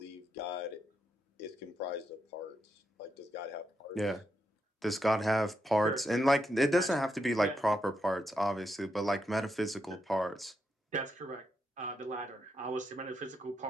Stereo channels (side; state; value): both; normal; correlation 0.82